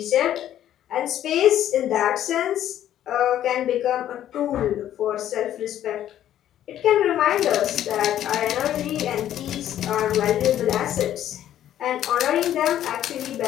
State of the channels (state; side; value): quieter; right; 11.6 dB